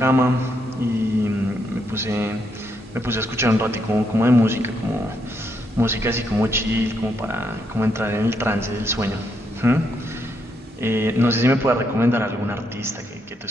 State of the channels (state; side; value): normal; both; correlation 0.77